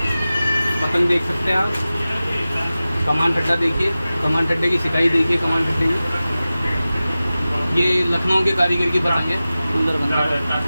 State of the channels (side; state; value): both; inverted; correlation -0.96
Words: पतंग देख सकते हैं आप। कमान ठड्डा देखिए, कमान ठड्डे की सिकाई देखिए, कमान ठड्डे की। ये लखनऊ के कारीगर की पतंग है, सुंदर बनता